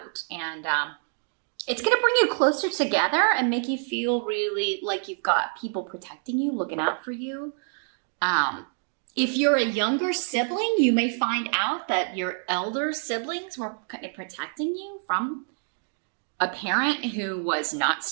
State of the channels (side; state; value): left; silent; 55 dB below the other